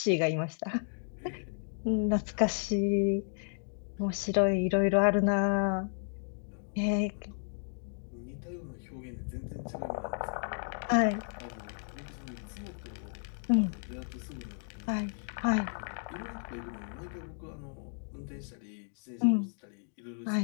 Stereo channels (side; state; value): right; silent; 55 dB below the other